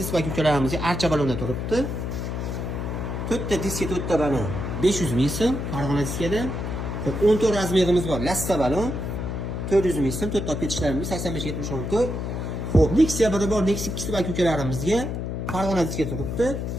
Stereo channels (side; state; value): left; noise; hum, 3 dB below the sound